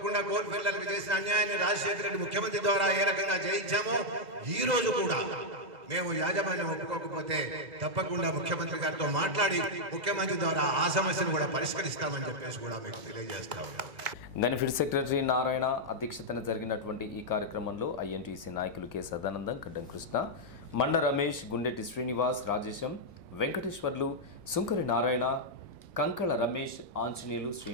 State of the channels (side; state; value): left; late; 2.0 ms